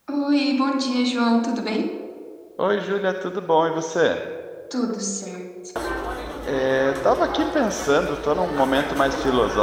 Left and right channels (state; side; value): identical; both; correlation 1.00